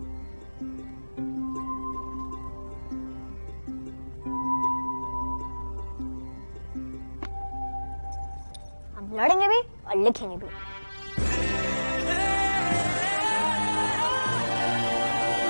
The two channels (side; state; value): both; inverted; correlation -1.00